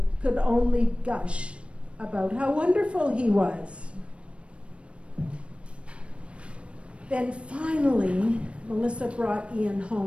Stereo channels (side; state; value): left; late; 0.060 ms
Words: could only gush about how wonderful he was. Then finally, Melissa brought Ian